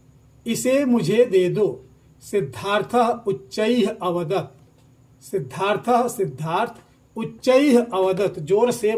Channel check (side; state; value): both; identical; correlation 1.00